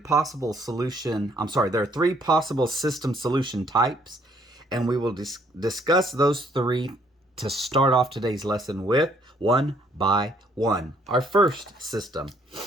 system solution types, and we will discuss those three to start off today's lesson with one by one. Our first system,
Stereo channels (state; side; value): normal; both; correlation 0.65